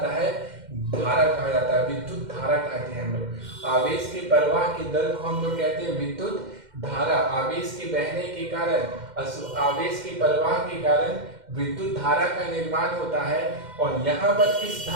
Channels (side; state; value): left; late; 2.1 ms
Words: है धारा, कहा जाता है विद्युत धारा कहते हैं हम लोग। आवेश के प्रवाह के दर को हम लोग कहते हैं विद्युत धारा। आवेश के बहने के कारण, आवेश के प्रवाह के कारण विद्युत धारा का निर्माण होता है। और यहाँ पर इस